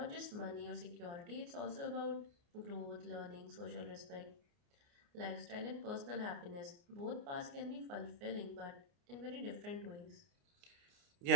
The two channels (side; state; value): left; late; 29 ms